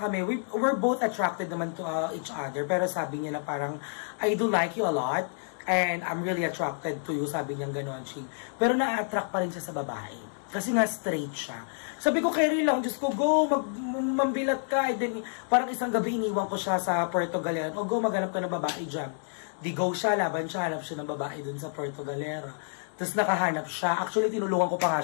we're both attracted naman to each other. Pero sabi niya na parang, I do like you a lot. And I'm really attracted to you, sabi niya gano'n, Ching. Pero na-attract pa rin siya sa babae. Kasi nga straight siya. Sabi ko, carry lang, Diyos ko, go, mambilat ka. And then, parang isang gabi iniwan ko siya sa Puerto Galera. O go, maghanap ka ng babae dyan. Di go siya, laban siya, hanap siya ng babae dun sa Puerto Galera. Tapos nakahanap siya. Actually, tinulungan ko pa nga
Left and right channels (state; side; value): silent; right; digital silence